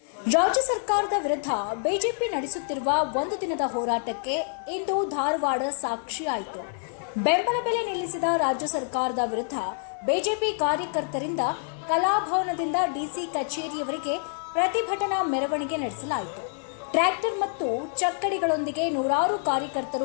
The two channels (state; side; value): silent; right; 60 dB below the other